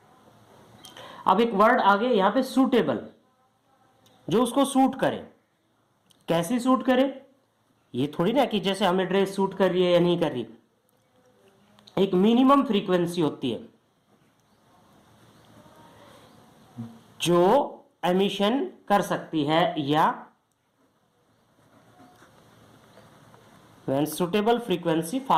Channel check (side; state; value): both; identical; correlation 1.00